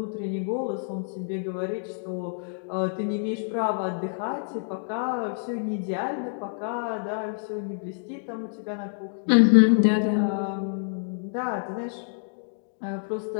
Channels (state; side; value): silent; right; digital silence